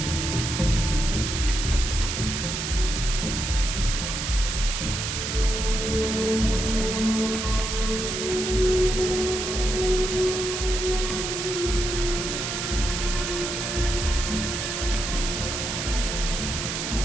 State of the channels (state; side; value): noise; right; hiss, 3 dB below the sound